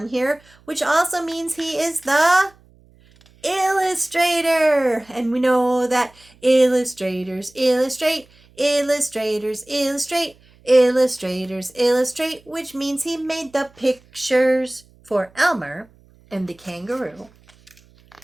here, which also means he is the illustrator. And we know that illustrators illustrate, illustrators illustrate, illustrators illustrate, which means he made the pictures for Elmer and the kangaroo.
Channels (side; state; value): right; noise; hum, 29 dB below the sound